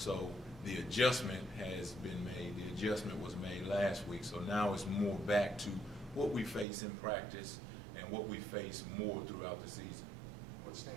the adjustment has been made. The adjustment was made last week. So now it's more back to what we face in practice and what we face more throughout the season. What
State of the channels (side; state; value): left; drops out; at 6.7 s